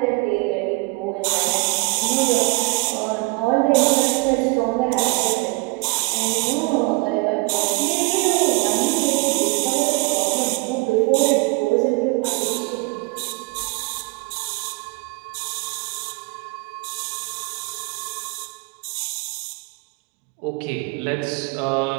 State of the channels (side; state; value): left; quieter; 27.9 dB